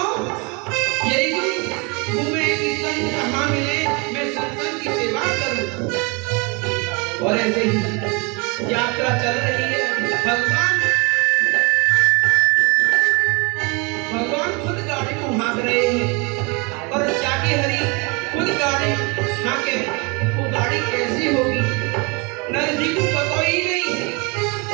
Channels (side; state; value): left; quieter; 30.0 dB